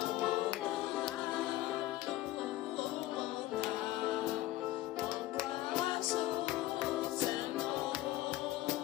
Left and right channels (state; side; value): quieter; right; 16.1 dB